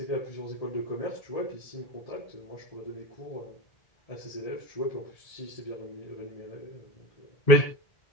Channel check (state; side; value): late; right; 1.8 ms